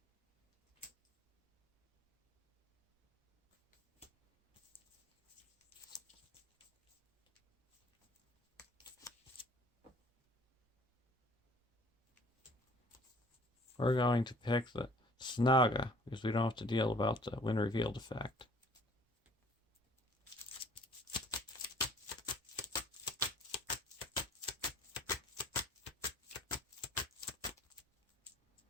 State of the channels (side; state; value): both; normal; correlation 0.52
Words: We're going to pick the Saga because we don't have to deal about the when revealed effect.